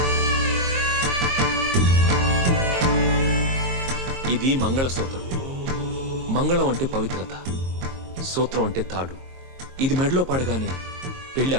ఇది మంగళసూత్రం. మంగళం అంటే పవిత్రత, సూత్రం అంటే తాడు. ఇది మెడలో పడగానే పెళ్లి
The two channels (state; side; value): late; left; 22 ms